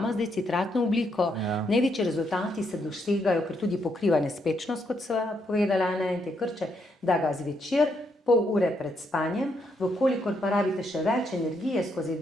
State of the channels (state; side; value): normal; both; correlation 0.77